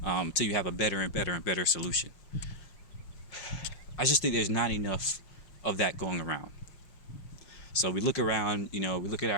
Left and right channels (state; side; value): late; right; 5.5 ms